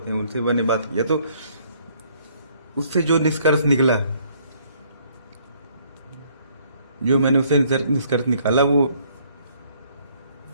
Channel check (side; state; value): both; inverted; correlation -0.64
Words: हैं उनसे मैंने बात किया, तो उससे जो निष्कर्ष निकला, जो मैंने उससे निष्कर्ष निकाला, वो